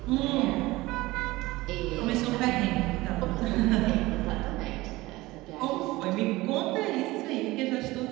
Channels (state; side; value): quieter; left; 19.7 dB